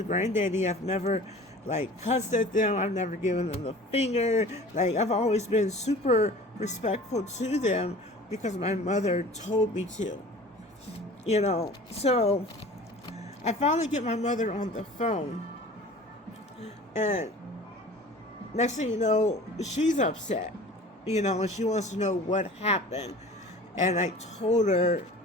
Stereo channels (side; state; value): both; normal; correlation 0.43